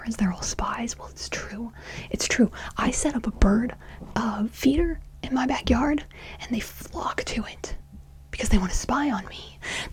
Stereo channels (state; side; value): identical; both; correlation 1.00